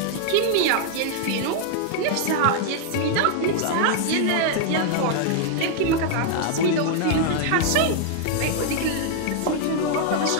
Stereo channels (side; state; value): both; different; correlation 0.00